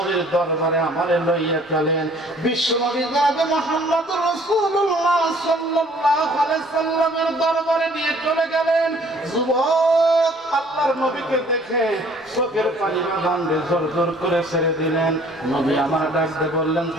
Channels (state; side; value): normal; both; correlation 0.56